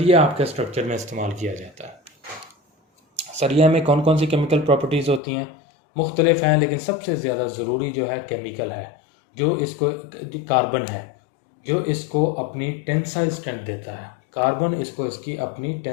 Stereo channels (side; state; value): right; drops out; at 5.2 s